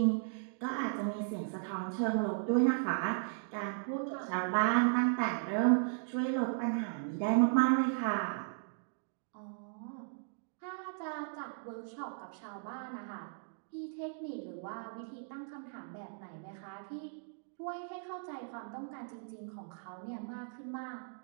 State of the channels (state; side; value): silent; left; digital silence